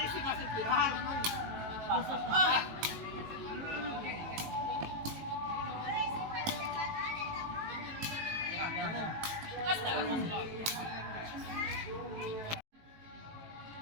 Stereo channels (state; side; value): late; left; 18 ms